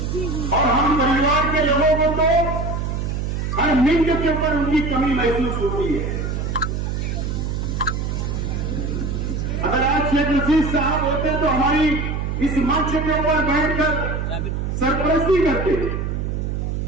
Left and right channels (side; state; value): right; noise; hum, 2 dB below the sound